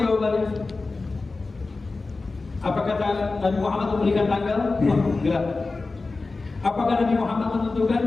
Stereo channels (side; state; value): right; quieter; 3.7 dB